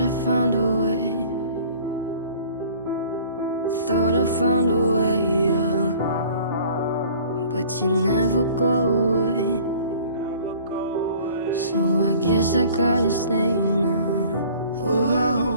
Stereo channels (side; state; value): both; inverted; correlation -0.50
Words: I found a way. Thought I found a way, yeah. But you never go away. So I guess I gotta stay now. Oh, I